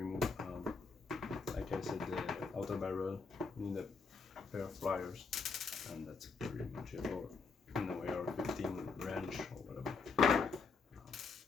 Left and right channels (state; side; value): quieter; right; 4.7 dB